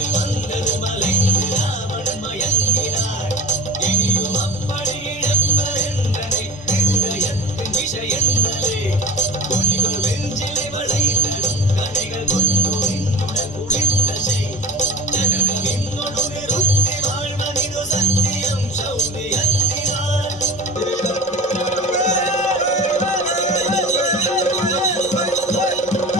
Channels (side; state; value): both; normal; correlation 0.40